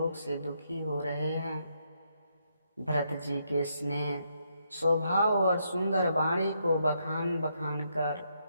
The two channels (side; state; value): both; inverted; correlation -0.77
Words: से दुखी हो रहे हैं। भरत जी के स्नेह स्वभाव और सुंदर वाणी को बखान बखान